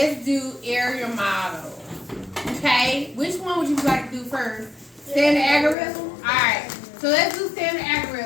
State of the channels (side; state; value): right; drops out; at 5.8 s